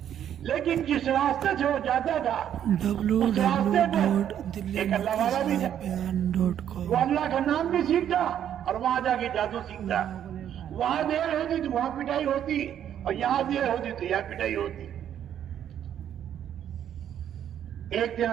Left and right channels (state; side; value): quieter; left; 10.0 dB